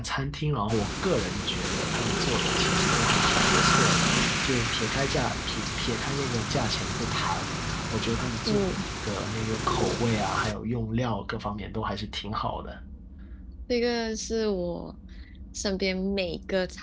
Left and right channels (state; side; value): identical; both; correlation 1.00